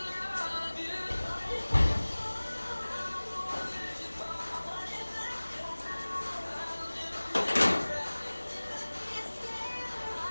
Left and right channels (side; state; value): both; inverted; correlation -1.00